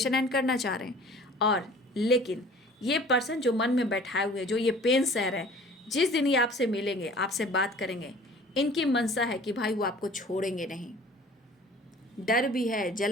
एंड करना चाह रहे हैं। और लेकिन ये पर्सन जो मन में बैठाए हुए, जो ये पेन सह रहे हैं, जिस दिन ये आपसे मिलेंगे, आपसे बात करेंगे, इनकी मनसा है कि भाई वो आपको छोड़ेंगे नहीं। डर भी है,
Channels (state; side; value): normal; both; correlation 0.48